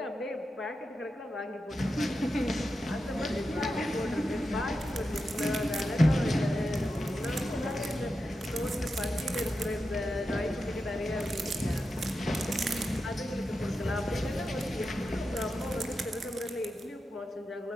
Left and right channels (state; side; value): normal; both; correlation 0.89